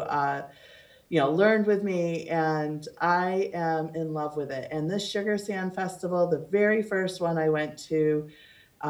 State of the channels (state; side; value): identical; both; correlation 1.00